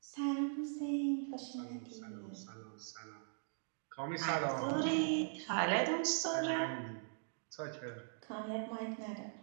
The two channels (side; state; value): left; silent; digital silence